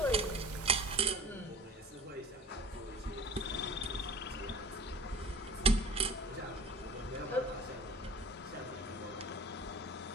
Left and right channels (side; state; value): both; normal; correlation 0.39